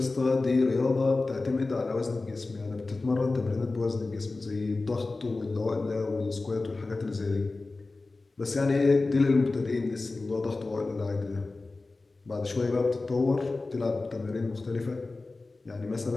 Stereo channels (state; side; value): quieter; right; 3.5 dB